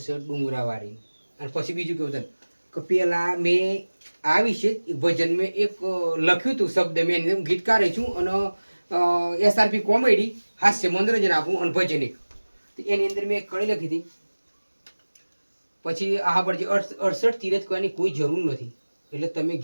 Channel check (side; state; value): both; inverted; correlation -1.00